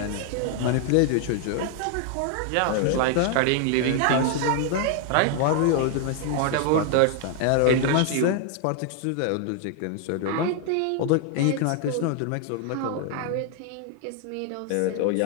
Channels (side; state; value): both; different; correlation 0.00